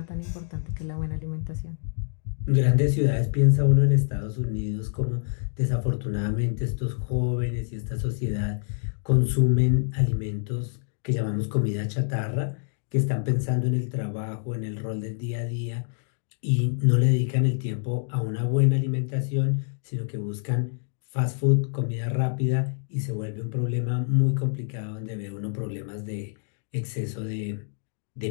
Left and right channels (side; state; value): right; silent; digital silence